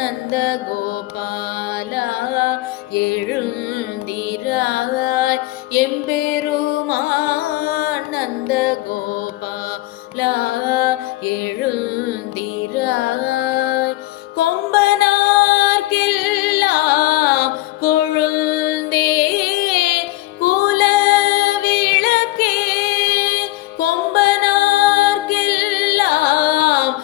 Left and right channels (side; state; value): right; quieter; 18.3 dB